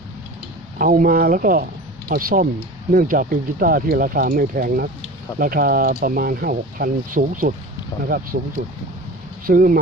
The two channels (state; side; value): normal; both; correlation 0.35